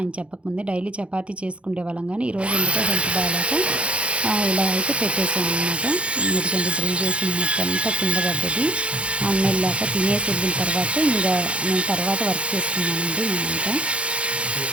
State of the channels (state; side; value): late; left; 0.060 ms